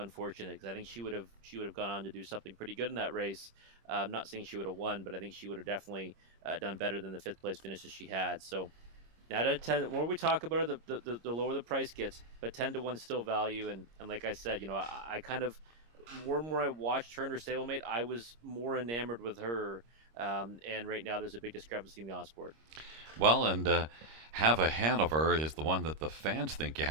because I think she would have gone on to do something pretty good in that race. I'm not saying she would have won, but I think she would have definitely done better than the fifth place finishes she had. So now, the more we talk about it, the lower the price gets. But 10 to 1 still value, and like I said, I kind of more and more I watched her and her stablemate, I was more enamored with her. And right now, there's a big discrepancy in the odds board. Well, and Have a Hanover is the one that the fans think you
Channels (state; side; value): late; left; 26 ms